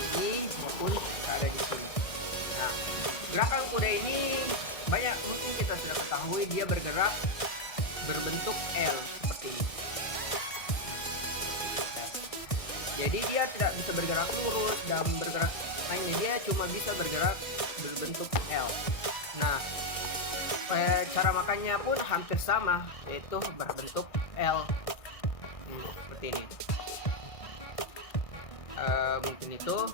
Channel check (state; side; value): late; right; 1.6 ms